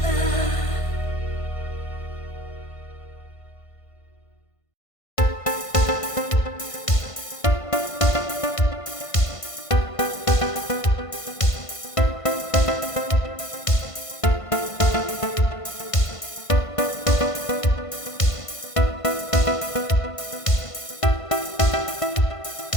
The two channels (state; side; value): late; right; 1.5 ms